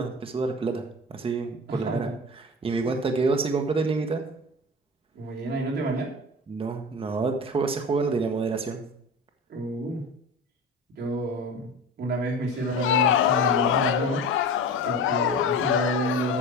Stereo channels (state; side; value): normal; both; correlation 0.31